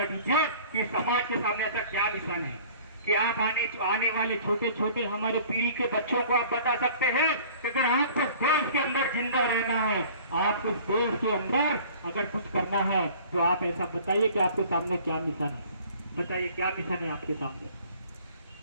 दीजिए कि समाज के सामने ऐसा क्या मिशन है कि आप आने वाले छोटे छोटे हमारे पीढ़ी के बच्चों को आप बता सकते हैं कि अगर आपको देश के अंदर जिंदा रहना है, आपको देश के अंदर अगर कुछ करना है तो आप ऐसा बताइए कि आपके सामने क्या मिशन है। बताइए क्या मिशन है आपके सामने?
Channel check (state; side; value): inverted; both; correlation -0.49